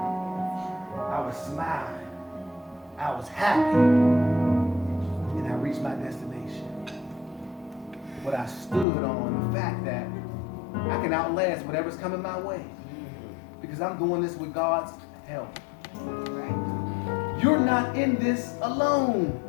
was smiling. I was happy. And I reached my destination. But I stood on the fact that I can outlast whatever's coming my way. Because I'm doing this with God's help. You're not in this alone.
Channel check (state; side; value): drops out; right; at 8.8 s